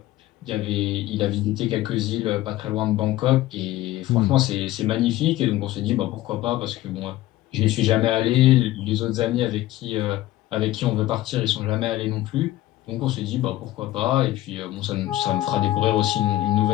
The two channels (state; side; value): quieter; right; 15.4 dB